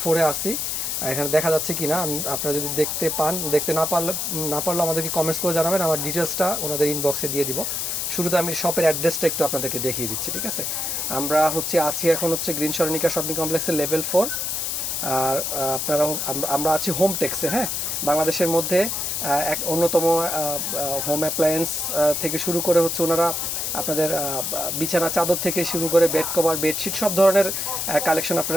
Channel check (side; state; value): left; noise; hiss, 1 dB below the sound